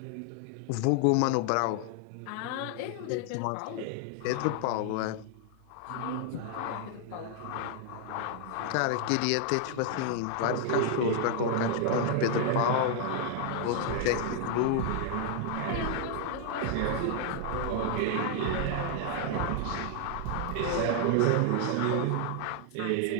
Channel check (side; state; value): both; different; correlation 0.00